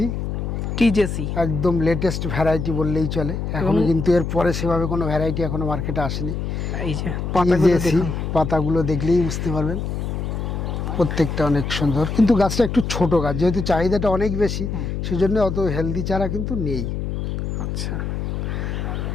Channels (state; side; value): noise; left; hum, 3 dB below the sound